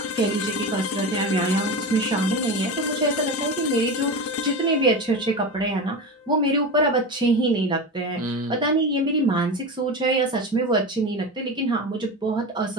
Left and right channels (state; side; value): normal; both; correlation 0.24